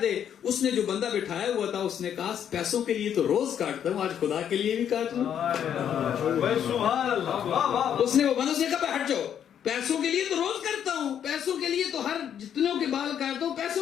دے. اس نے جو بندہ بٹھایا ہوا تھا اس نے کہا پیسوں کے لیے تو روز کاٹتا ہوں، آج خدا کے لیے بھی کاٹ لوں. اس نے وہ بندہ سے کہا ہٹ جاؤ، پیسوں کے لیے تو روز کرتا ہوں، پیسوں کے لیے تو ہر جتنوں کے بال کاٹتا ہوں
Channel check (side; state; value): right; quieter; 9.1 dB